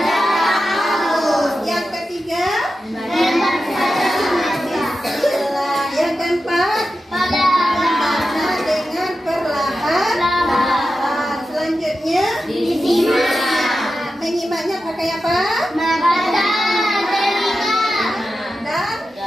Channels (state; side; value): normal; both; correlation 0.91